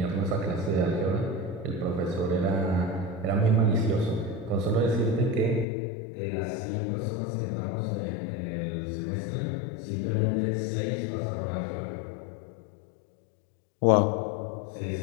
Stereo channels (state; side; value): drops out; right; at 5.7 s